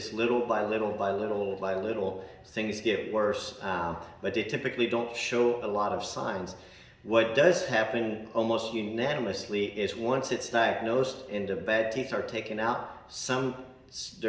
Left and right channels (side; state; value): both; identical; correlation 1.00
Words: little by little by little by little things get worse, but they typically don't show a lot of signs. What does happen almost unanimously is once it's diagnosed and the bad teeth are taken out,